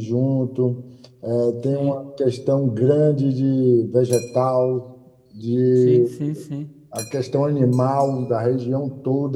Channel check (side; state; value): both; identical; correlation 1.00